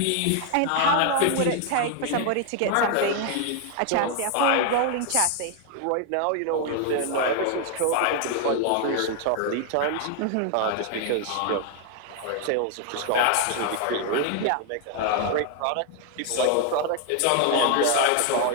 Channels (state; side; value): different; both; correlation 0.00